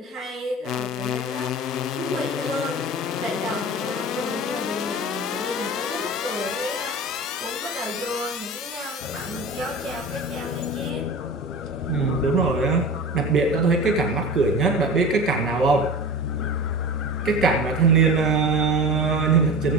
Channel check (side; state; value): both; normal; correlation 0.33